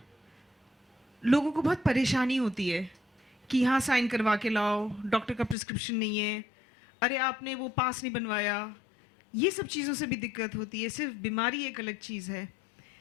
लोगों को बहुत परेशानी होती है कि यहाँ साइन करवा के लाओ, डॉक्टर का प्रिस्क्रिप्शन नहीं है, अरे आपने वो पास नहीं बनवाया। ये सब चीज़ों से भी दिक्कत होती है। सिर्फ बीमारी एक अलग चीज़ है,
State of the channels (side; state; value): right; drops out; at 5.6 s